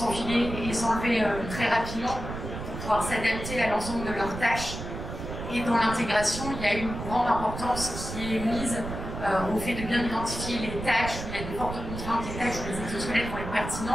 et s'enlever très rapidement pour pouvoir s'adapter à l'ensemble de leurs tâches. Et dans l'intégration, il y a une grande importance qui est mise au fait de bien identifier les tâches où il y a de fortes contraintes, les tâches où les exosquelettes vont être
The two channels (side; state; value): right; noise; rumble, 7 dB below the sound